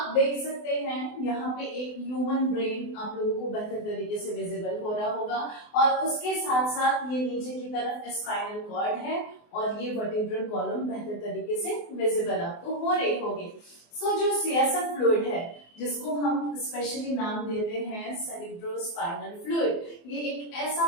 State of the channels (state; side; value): late; right; 24 ms